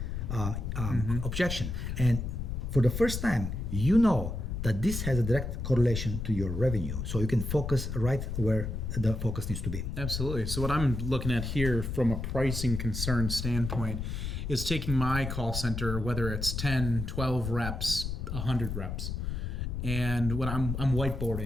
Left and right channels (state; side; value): noise; left; rumble, 4 dB below the sound